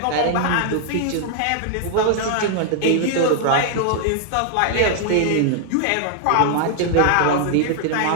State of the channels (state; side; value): different; both; correlation 0.00